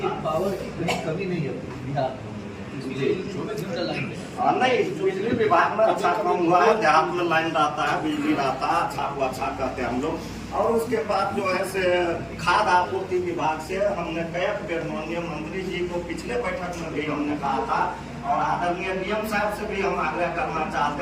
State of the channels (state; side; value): identical; both; correlation 1.00